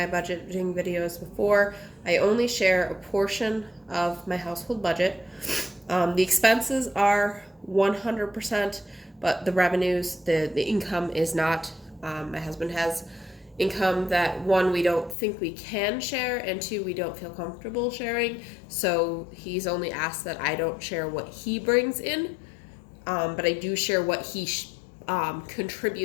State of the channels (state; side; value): drops out; right; at 15.2 s